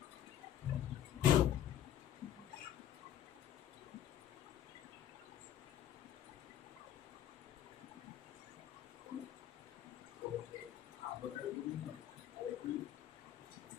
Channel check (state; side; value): quieter; right; 11.1 dB